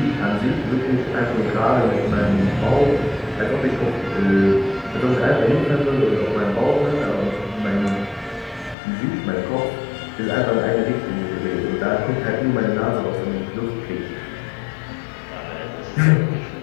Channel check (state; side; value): drops out; right; at 8.8 s